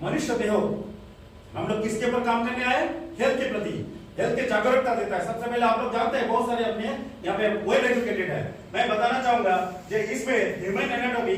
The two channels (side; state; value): both; identical; correlation 1.00